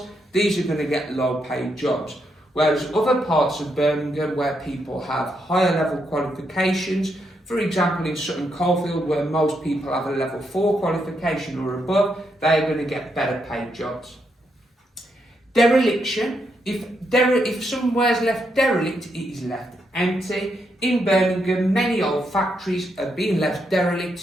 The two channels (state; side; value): normal; both; correlation 0.80